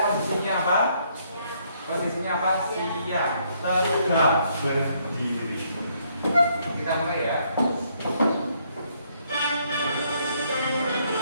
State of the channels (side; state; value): both; inverted; correlation -0.70